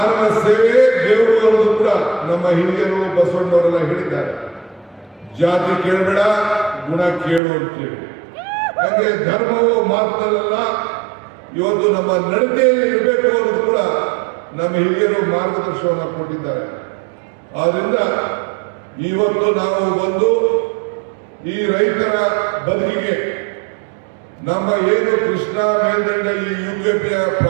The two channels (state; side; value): drops out; left; at 7.4 s